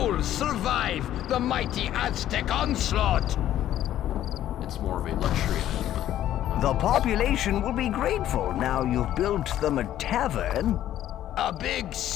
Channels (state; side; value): quieter; right; 12.2 dB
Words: survive the mighty Aztec onslaught? It's more of a luxury item. The population will be grateful now you've built them a tavern. A big